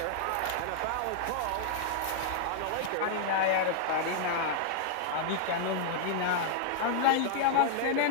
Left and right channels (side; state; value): both; different; correlation -0.01